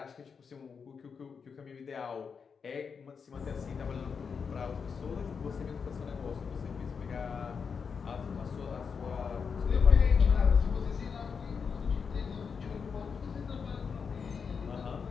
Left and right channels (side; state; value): right; quieter; 5.9 dB